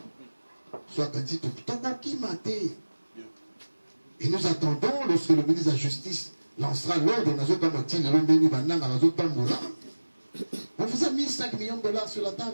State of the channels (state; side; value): inverted; both; correlation -1.00